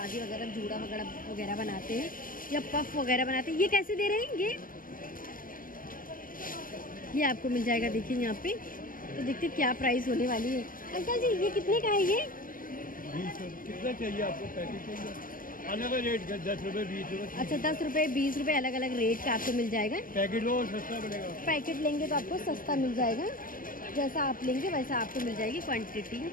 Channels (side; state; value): right; late; 0.41 ms